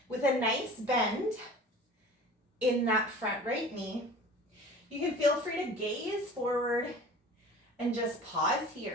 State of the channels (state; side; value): normal; both; correlation 0.41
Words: with a nice bend in that front right knee. You can feel free to gaze forward and just pause